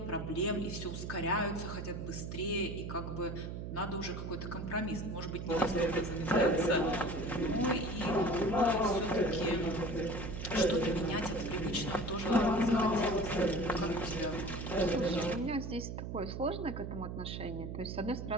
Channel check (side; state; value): right; noise; hum, 6 dB below the sound